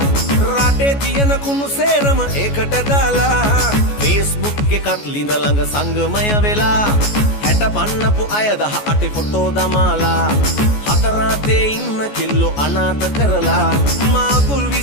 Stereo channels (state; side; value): late; right; 14 ms